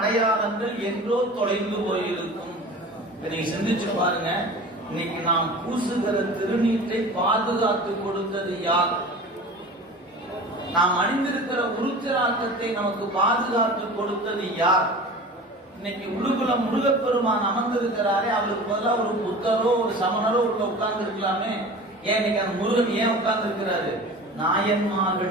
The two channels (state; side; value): normal; both; correlation 0.37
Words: என்றோ தொலைந்து போயிருக்கும். நீங்க சிந்திச்சு பாருங்க, இன்னைக்கு நாம் பூசுகிற திருநீற்றை பாதுகாத்து கொடுத்தது யார்? நாம் அணிந்திருக்கிற உருத்திராக்கத்தை நமக்கு பாதுகாத்து கொடுத்தது யார்? இன்னைக்கு உடுகுல முருகப்பெருமான் அமர்ந்திருக்கிறாரே, அவருக்கு பதிலாக ஒரு புத்தரோ ஒரு சமணரோ உள்ள உட்கார்ந்து இருக்கலாமே. ஏன் இன்னைக்கு அந்த முருகன் ஏன் உட்கார்ந்து இருக்கிறாரு?